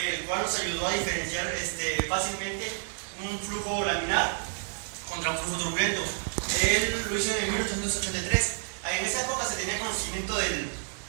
cual nos ayudó a diferenciar fácilmente un flujo laminar contra un flujo turbulento. Él lo hizo en 1883. En esa época se tenía conocimiento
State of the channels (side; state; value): left; silent; 58 dB below the other